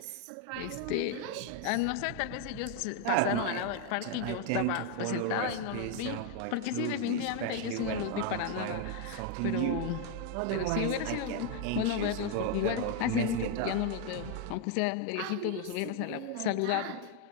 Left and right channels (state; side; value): different; both; correlation 0.01